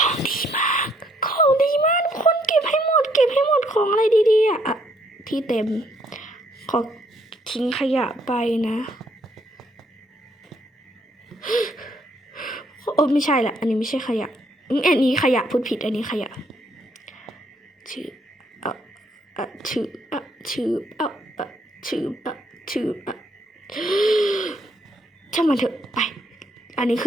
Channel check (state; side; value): normal; both; correlation 0.69